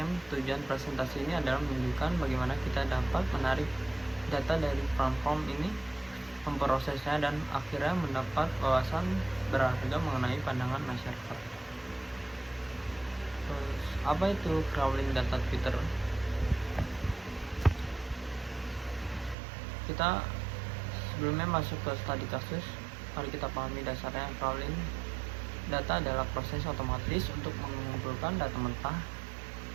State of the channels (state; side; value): drops out; left; at 19.4 s